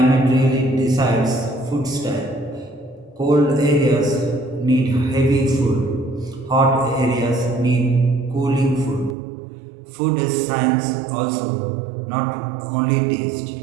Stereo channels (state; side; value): drops out; left; at 9.2 s